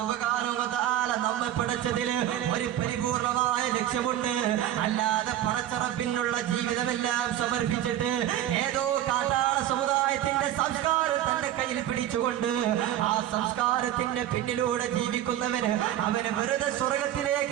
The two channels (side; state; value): left; quieter; 12.0 dB